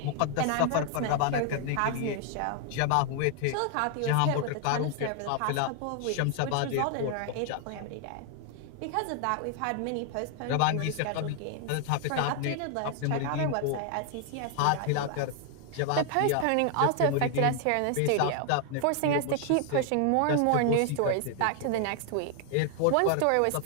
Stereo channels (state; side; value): different; both; correlation 0.00